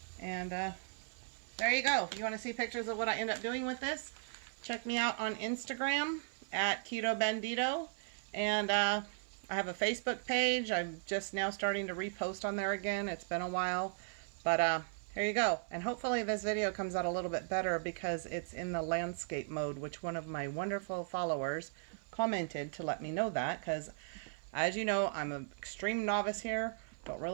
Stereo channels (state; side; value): silent; left; 53 dB below the other